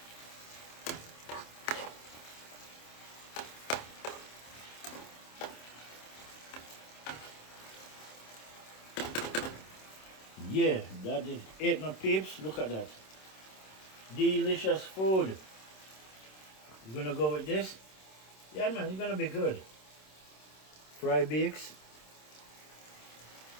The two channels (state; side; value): late; right; 26 ms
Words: Yeah, that is it, my peeps. Look at that. Delicious food. You're gonna go with this? Yeah, man, it's gonna be good. Fry bakes